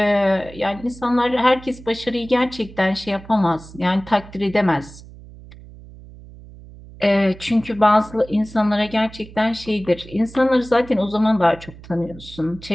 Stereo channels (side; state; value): right; noise; hum, 18 dB below the sound